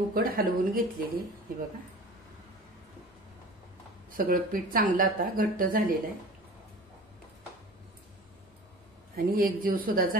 हलवून घेतलेली. हे बघा सगळं पीठ चांगलं आता घट्ट झालेलं आहे आणि एकजीव सुद्धा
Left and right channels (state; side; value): normal; both; correlation 0.40